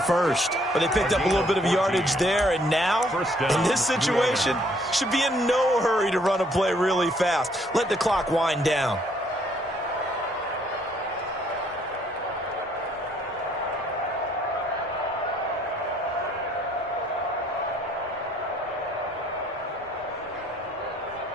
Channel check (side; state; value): both; normal; correlation 0.65